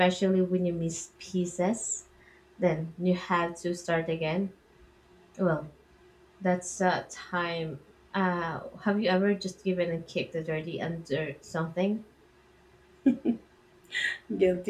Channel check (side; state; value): both; identical; correlation 1.00